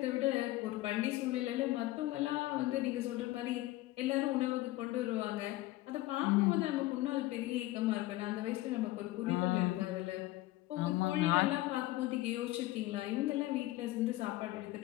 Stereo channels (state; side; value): quieter; right; 17.4 dB